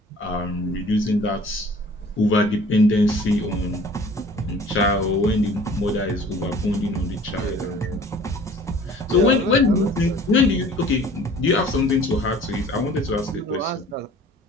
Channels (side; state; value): both; normal; correlation 0.49